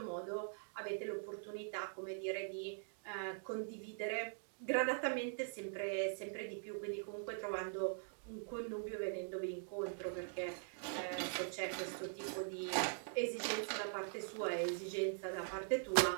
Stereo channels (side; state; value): left; silent; digital silence